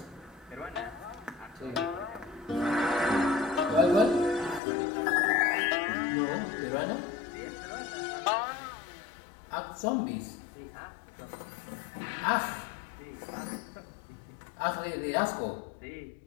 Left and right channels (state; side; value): drops out; right; at 4.6 s